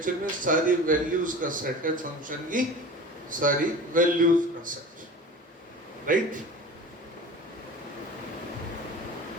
में सारी वैल्यूज का सेट है, फंक्शन की सारी वैल्यूज का सेट, राइट।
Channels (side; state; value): both; normal; correlation 0.37